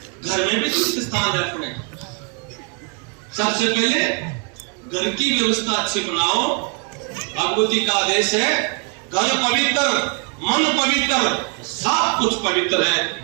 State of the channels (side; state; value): left; quieter; 37.1 dB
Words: घर में भी तीर्थ स्थान है अपने। सबसे पहले घर की व्यवस्था अच्छी बनाओ। भगवती का आदेश है, घर पवित्र मन पवित्र, सब कुछ पवित्र